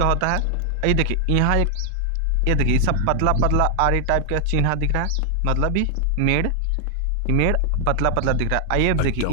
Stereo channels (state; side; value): different; both; correlation 0.00